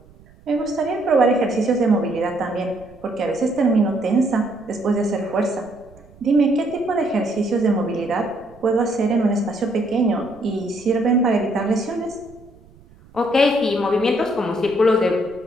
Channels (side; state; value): right; noise; rumble, 25 dB below the sound